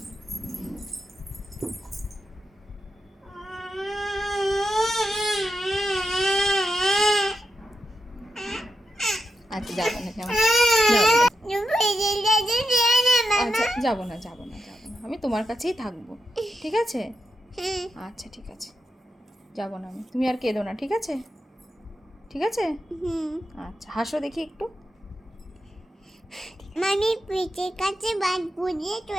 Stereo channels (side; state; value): both; normal; correlation 0.86